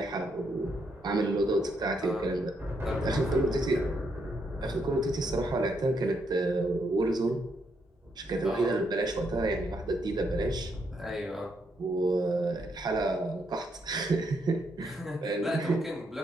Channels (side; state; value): both; normal; correlation 0.77